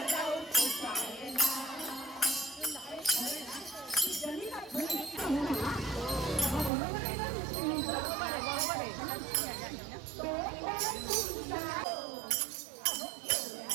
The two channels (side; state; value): left; drops out; at 6.7 s